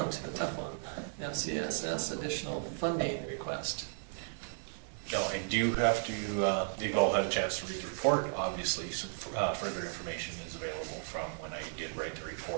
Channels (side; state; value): left; silent; digital silence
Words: to the tough one. FCSS additional funding request. Now, I do have to, you've all had a chance to read the report. Obviously, some further information is available from when I did write the